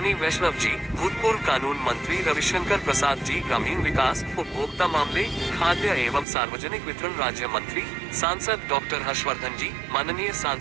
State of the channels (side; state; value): left; drops out; at 6.2 s